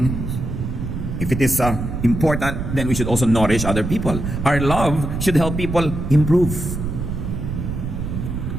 if it is important, then we should also nourish other people. Our love should help people improve.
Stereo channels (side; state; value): right; noise; rumble, 4 dB below the sound